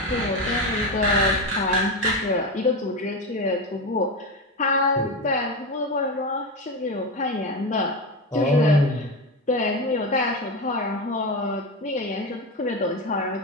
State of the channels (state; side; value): normal; both; correlation 0.17